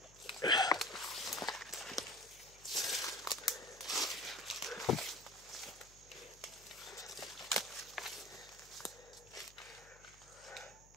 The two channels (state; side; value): noise; left; hum, 23 dB below the sound